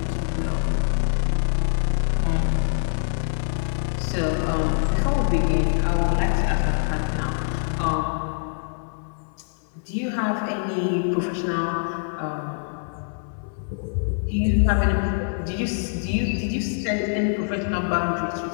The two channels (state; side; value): silent; right; 62 dB below the other